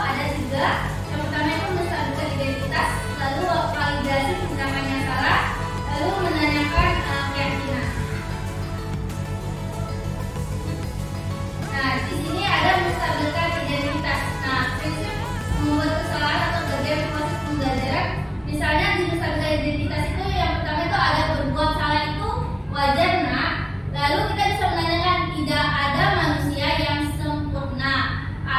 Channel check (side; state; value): both; identical; correlation 1.00